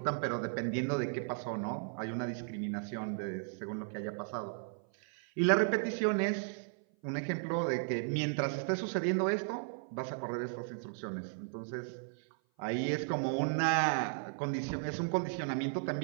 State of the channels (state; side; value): silent; left; 54 dB below the other